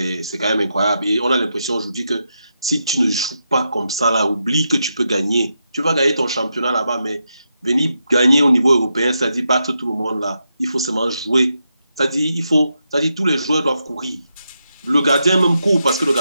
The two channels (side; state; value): both; inverted; correlation -0.85